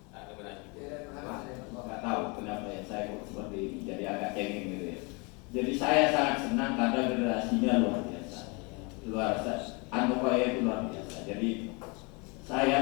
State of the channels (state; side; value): quieter; right; 30.2 dB